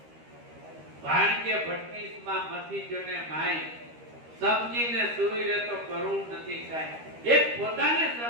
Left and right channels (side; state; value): left; late; 13 ms